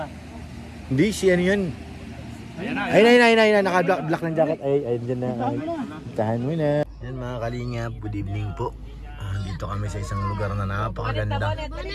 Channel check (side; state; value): both; identical; correlation 1.00